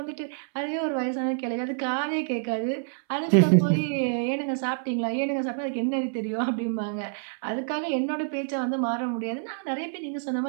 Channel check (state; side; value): silent; left; 60 dB below the other